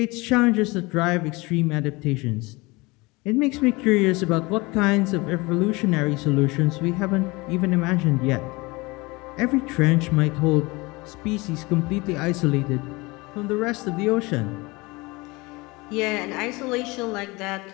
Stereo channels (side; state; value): right; quieter; 24.0 dB